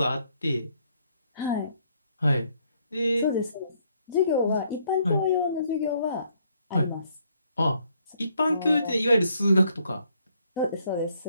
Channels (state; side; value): inverted; both; correlation -0.69